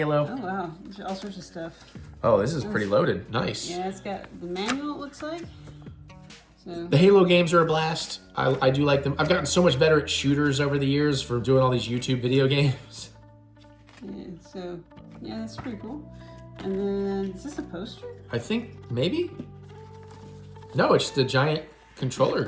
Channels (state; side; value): identical; both; correlation 1.00